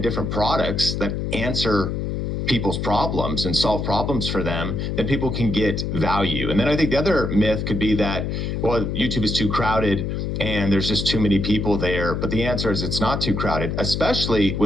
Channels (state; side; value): noise; left; hum, 2 dB below the sound